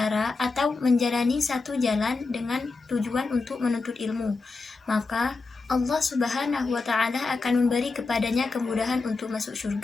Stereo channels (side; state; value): right; quieter; 3.9 dB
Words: atau menjalani satu jalan dengan tujuan untuk menuntut ilmu, maka Allah Subhanahu wa Ta'ala akan memberi kepadanya kemudahan untuk masuk